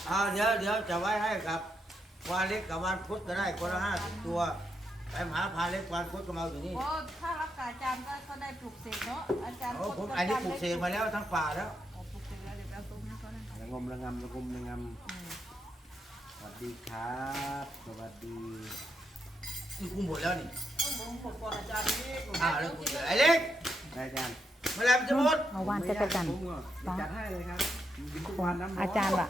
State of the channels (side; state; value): both; normal; correlation 0.81